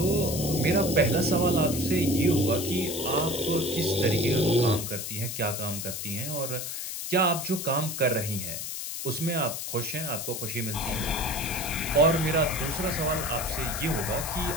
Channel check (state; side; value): noise; left; hiss, 5 dB below the sound